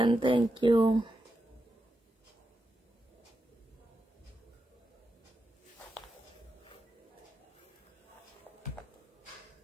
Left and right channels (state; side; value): normal; both; correlation 0.87